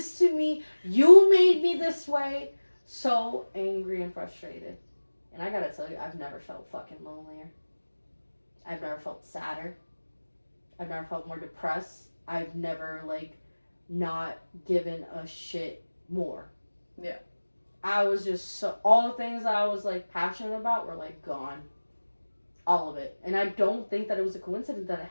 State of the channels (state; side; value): inverted; both; correlation -1.00